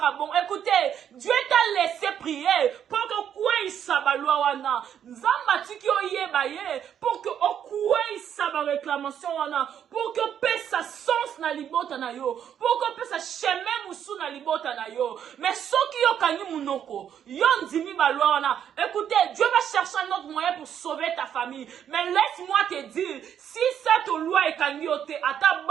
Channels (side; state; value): left; quieter; 9.1 dB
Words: bongo. Écoutez, Dieu t'a laissé prier pour que quoi il sabalua wana. Nzamba tiki oye baye pour que quoi il saba réclamation wana. Pour que paix sa sens na libota na yo. Pour que paix sa chemin musu na libota na yo. Mais ceux qui yo kanyi munoko, yon dimi balua wana. Écoutez, Dieu va chercher un autre moyen pour sauver ta famille. Mais laisse-moi te dire, si cette loi est kanyi, c'est